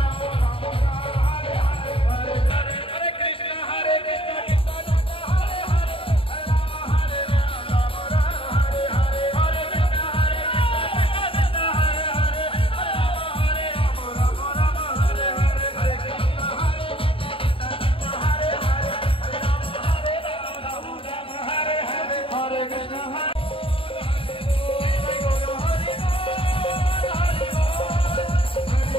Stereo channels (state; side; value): late; right; 0.26 ms